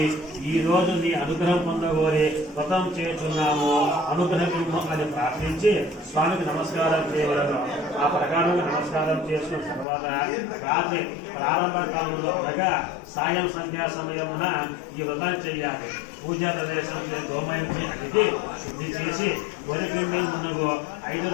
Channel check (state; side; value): drops out; right; at 9.9 s